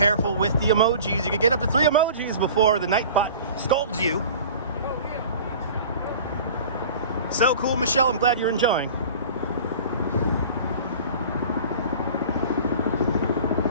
with the emojis. You can get up to 3 emojis before the Nightbot scolds you. So cool, Michelle. I'm glad you're enjoying.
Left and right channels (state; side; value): inverted; both; correlation -0.42